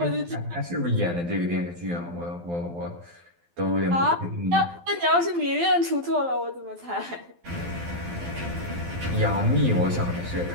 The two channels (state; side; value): late; left; 12 ms